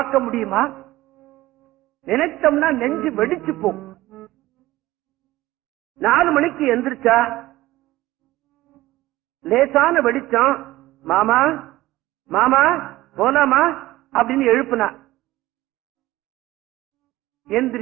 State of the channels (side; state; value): left; quieter; 17.3 dB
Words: முடியுமா? நினைச்சோம்னா நெஞ்சு வெடிச்சு போகும். 4 மணிக்கு எந்திரிச்சா லேசான வெடிச்சம், மாமா மாமா போலாமா அப்படின்னு எழுப்புனா.